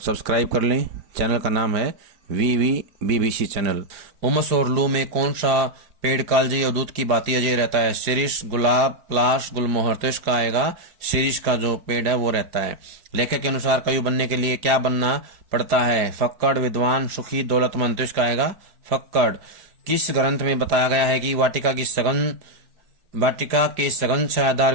सब्सक्राइब कर लें। चैनल का नाम है BBC चैनल। उमस और लू में कौन सा पेड़ कालजी और दूध की बाती अजय रहता है? शिरीष, गुलाब, पलाश, गुलमोहर। तो इसका आएगा शिरीष का जो पेड़ है वो रहता है। लेखक के अनुसार कवि बनने के लिए क्या बनना पड़ता है? फक्कड़, विद्वान, सुखी, दौलतमंद। तो इसका आएगा फक्कड़। किस ग्रंथ में बताया गया है कि वाटिका के सघन छायादार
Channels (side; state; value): left; late; 4.9 ms